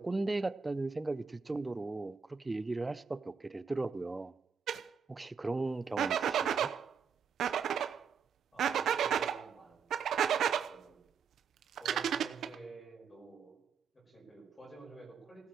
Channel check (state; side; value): quieter; left; 6.2 dB